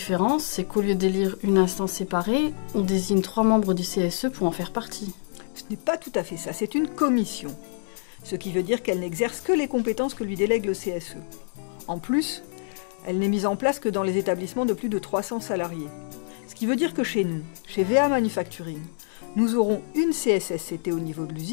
c'est qu'au lieu d'élire une instance séparée, on désigne 3 membres du CSE pour en faire partie. Ce n'est pas tout à fait ça, c'est une commission. Ce qui veut dire qu'elle n'exerce que les compétences que lui délègue le CSE. En plus, elle n'est mise en place que dans les établissements de plus de 300 salariés. Ce qui veut dire que chez nous, chez VA Manufacturing, nous aurons une CSSCT au niveau de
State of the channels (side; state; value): right; silent; 61 dB below the other